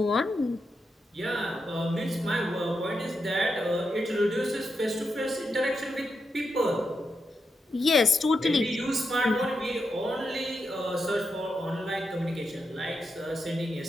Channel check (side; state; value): both; normal; correlation 0.86